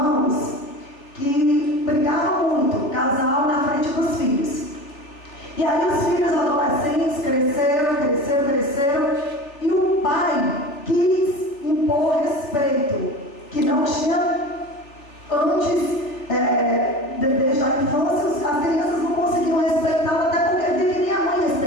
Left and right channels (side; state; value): right; late; 3.5 ms